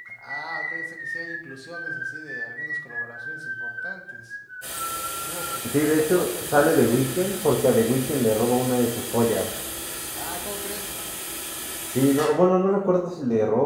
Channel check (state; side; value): identical; both; correlation 1.00